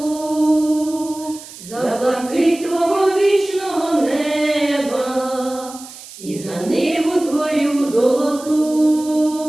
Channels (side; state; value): right; noise; hiss, 16 dB below the sound